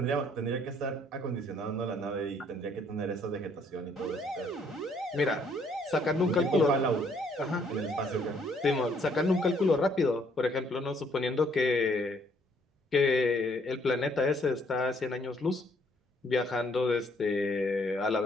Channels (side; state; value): both; normal; correlation 0.66